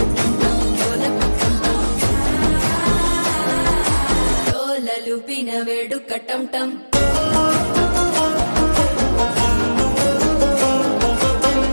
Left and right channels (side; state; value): both; inverted; correlation -1.00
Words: డోలలు పిన వేడుక టం టం